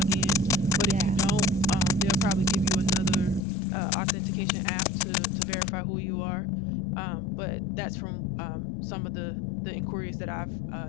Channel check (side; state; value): right; drops out; at 3.4 s